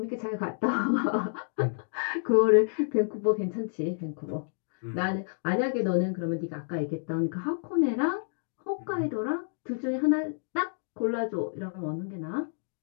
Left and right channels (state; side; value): silent; right; digital silence